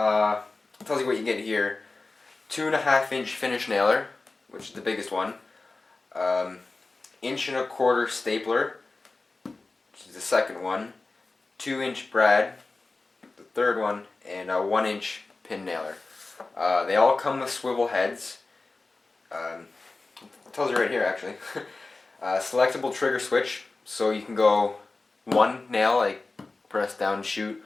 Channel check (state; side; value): quieter; right; 3.5 dB